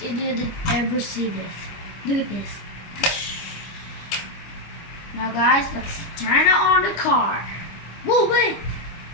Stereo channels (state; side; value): late; right; 25 ms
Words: you didn't ever see this. Look at this. Now guys, let's turn it on the car. Whoa, wait!